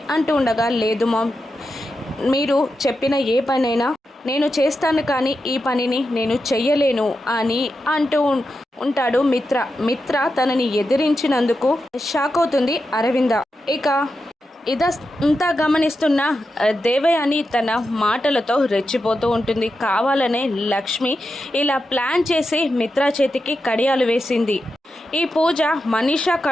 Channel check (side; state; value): both; normal; correlation 0.89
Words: అంటూ ఉండగా, లేదు మామ్, మీరు చెప్పిన ఏ పనైనా నేను చేస్తాను, కానీ ఈ పనిని నేను చెయ్యలేను అని అంటూ ఉంటాడు మిత్ర. మిత్ర తనని ఎదిరించినందుకు షాక్ అవుతుంది అరవింద. ఇక ఇదంతా గమనిస్తున్న దేవయాని తన మాటలతో రెచ్చిపోతూ ఉంటుంది. కావాలనే లక్ష్మి ఇలా ప్లాన్ చేసి మిత్ర చేతికి కడియాలు వేసింది. ఈ పూజ మనీషా